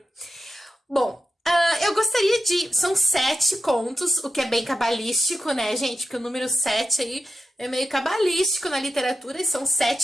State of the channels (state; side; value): normal; both; correlation 0.91